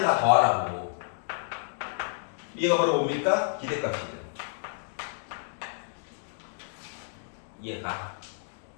더하라고. 이해가 바로 뭡니까? 기대값이죠. 이해가?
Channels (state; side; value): silent; right; digital silence